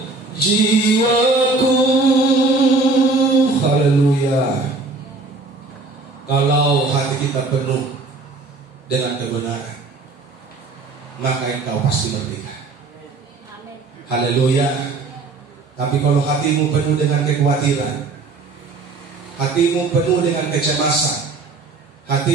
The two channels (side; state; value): left; quieter; 3.8 dB